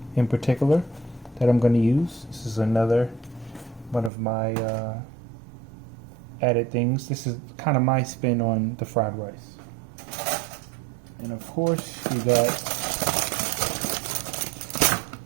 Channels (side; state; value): left; drops out; at 4.1 s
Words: in particular that I'm going to use. This is another one of my added things. This is kind of my spin on the fried rice. And of course you got,